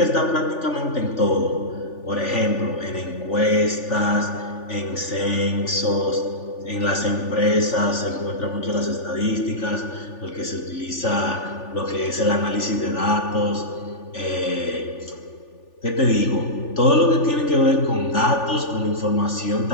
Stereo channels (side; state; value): right; late; 3.4 ms